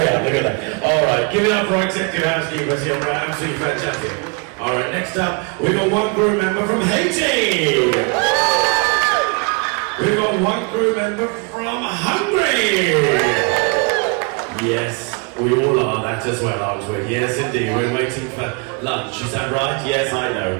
are. Look at that. All right, give it up for our executive housekeepers here. Right, absolutely fantastic. All right, next up, we've got one crew member from Haiti. We've got one crew member from Hungary. Yes, we all are that as well, aren't we? Yes, indeed. We're waiting for lunch. Is that right? Yes, I know.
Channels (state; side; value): quieter; left; 31.8 dB